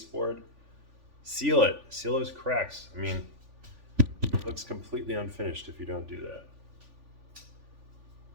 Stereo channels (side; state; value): left; late; 3.5 ms